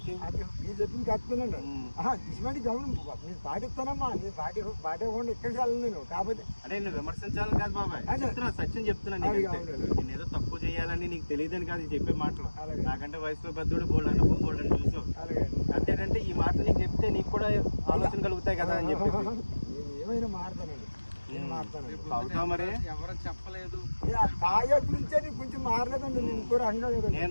మీరు చెప్పింది కరెక్టేనండి. ఇటువంటి గమనం నేను పాటిస్తానమ్మా. నేను పాటివ్వండి ఇక్కడికి వెళ్ళను నేను. కాకపోతే అంటే నేను విమర్శించాలని కాదు బాబాయ్, చెప్తున్నా, సత్యం చెప్తున్నాను. నేను ఏదో తప్పు చేయాలని నీకు తెలియదని కాదు చెప్పే మాటలు. నాకంటే వయసులో పెద్దోడు బోల్డ్ అనుభవం బోల్డ్ అని చూసావు. అంతేంటంటే ఈ మాటలు నీకు చెప్తే నీకు కూడా ఆలోచన కలుగుతాయి కదా అని చెప్పి నేను ఏమైనా మారుతానండి. నేను మారుతాను. అవుతావు మరి. ఎవరు చెప్పలేదు. తాగే గురించే కొంచెం మారలేదండి. నేను కూడా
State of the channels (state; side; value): inverted; both; correlation -1.00